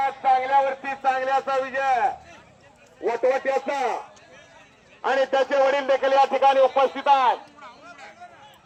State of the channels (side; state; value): both; identical; correlation 1.00